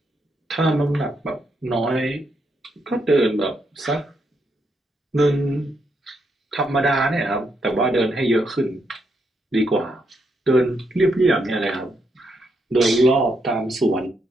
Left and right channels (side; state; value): both; normal; correlation 0.79